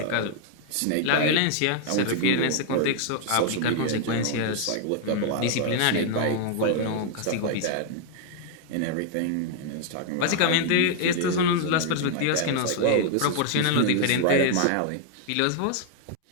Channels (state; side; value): different; both; correlation 0.00